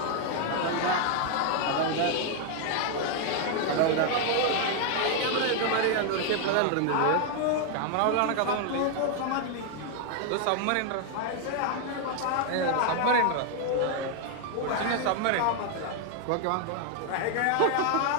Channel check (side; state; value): both; different; correlation 0.00